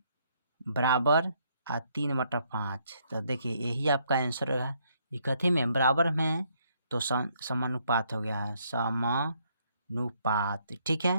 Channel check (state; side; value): inverted; both; correlation -0.70